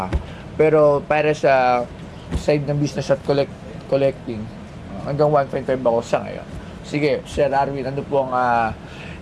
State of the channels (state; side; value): identical; both; correlation 1.00